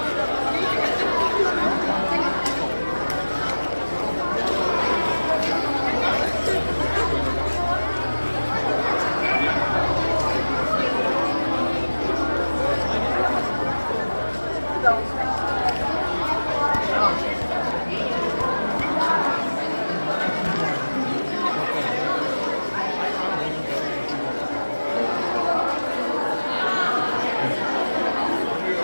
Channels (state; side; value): inverted; both; correlation -1.00